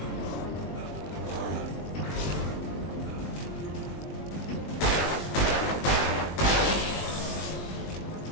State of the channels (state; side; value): late; right; 20 ms